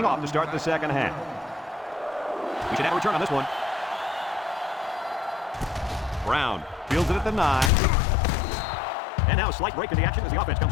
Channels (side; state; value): right; drops out; at 7.7 s